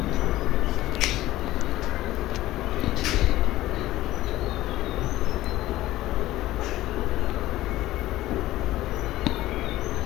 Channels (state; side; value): quieter; right; 16.0 dB